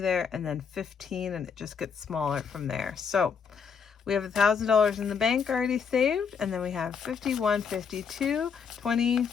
there, and then 15, and it just gets smaller from there. So we have $1,000 in the bank already saved, and then we have 51, 52, 20,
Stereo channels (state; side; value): quieter; right; 6.3 dB